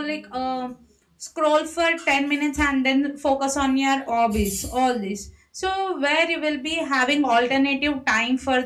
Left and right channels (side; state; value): both; identical; correlation 1.00